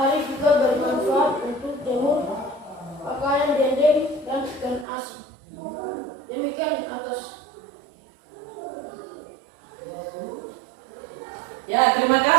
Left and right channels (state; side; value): drops out; left; at 4.9 s